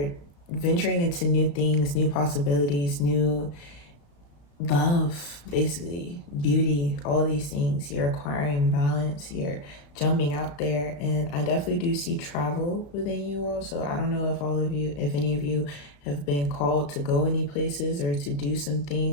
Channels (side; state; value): right; late; 35 ms